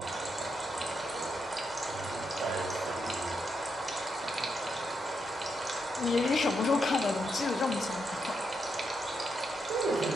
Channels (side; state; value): both; normal; correlation 0.82